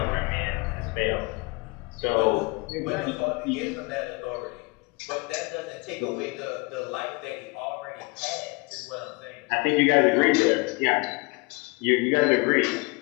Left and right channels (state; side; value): quieter; right; 27.2 dB